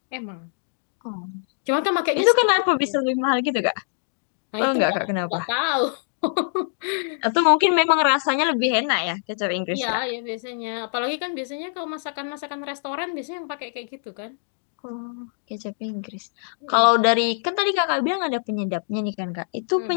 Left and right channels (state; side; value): silent; right; digital silence